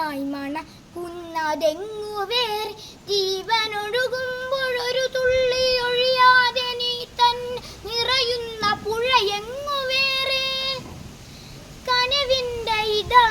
മണക്കുന്നതെങ്ങു വേറെ. ജീവനൊഴുകുമ്പോൾ ഒരു തുള്ളി ഒഴിയാതെ നീ തന്നെ നിറയുന്ന പുഴയെങ്ങു വേറെ. കനവിൻ്റെ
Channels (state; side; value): identical; both; correlation 1.00